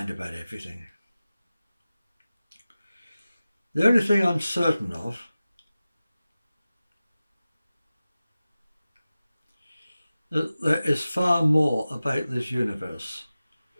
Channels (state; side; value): inverted; both; correlation -0.96